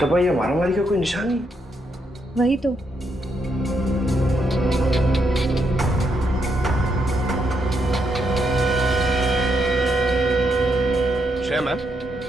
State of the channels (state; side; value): normal; both; correlation 0.79